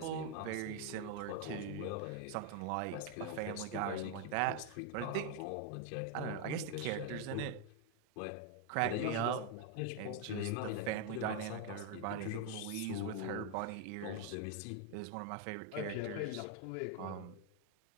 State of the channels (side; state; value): both; different; correlation 0.01